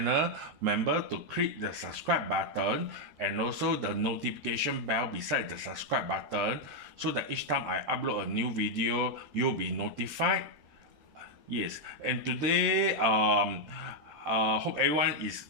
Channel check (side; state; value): left; late; 13 ms